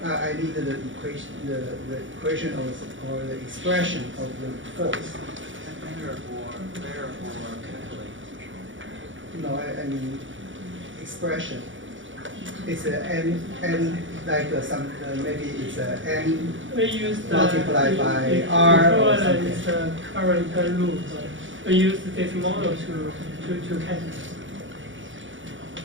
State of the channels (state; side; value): late; left; 0.56 ms